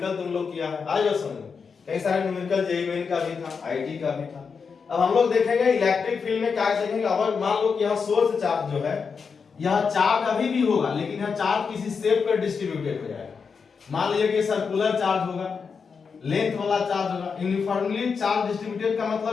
तुम लोग किया है, आज समझ में। कई सारे न्यूमेरिकल जेईई मेन का भी था, आईटी का भी था। अब हम लोग देखेंगे इलेक्ट्रिक फील्ड में क्या देखेंगे। अगर मान लो कि यह सोर्स चार्ज जो है, यह चार्ज अभी भी होगा, लेकिन यह चार्ज किसी शेप पर डिस्ट्रीब्यूटेड हो जाएगा। मान लीजिए कि सर्कुलर चार्ज होगा, लेंथ वाला चार्ज होगा। यूनिफॉर्मली चार्ज डिस्ट्रीब्यूटेड का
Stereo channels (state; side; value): quieter; right; 5.6 dB